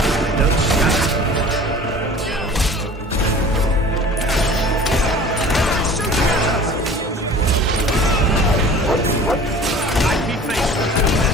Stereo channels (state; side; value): normal; both; correlation 0.44